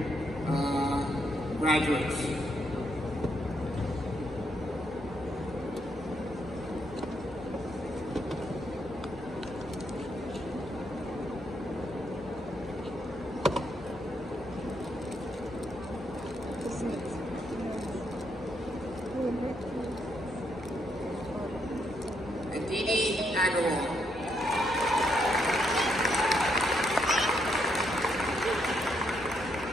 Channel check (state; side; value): normal; both; correlation 0.76